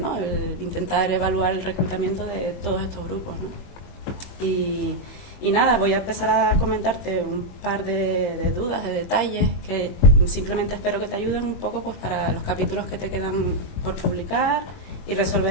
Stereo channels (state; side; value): late; right; 21 ms